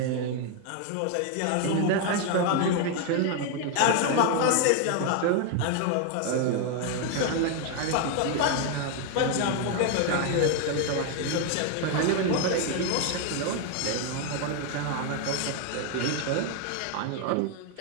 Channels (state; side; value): different; both; correlation 0.01